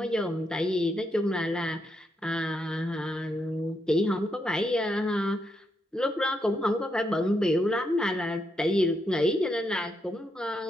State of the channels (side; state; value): both; normal; correlation 0.80